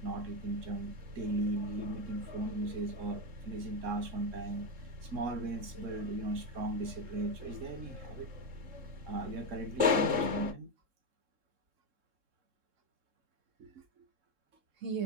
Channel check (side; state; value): left; late; 3.7 ms